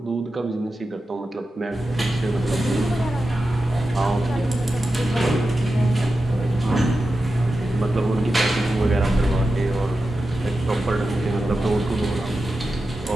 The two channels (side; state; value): both; normal; correlation 0.91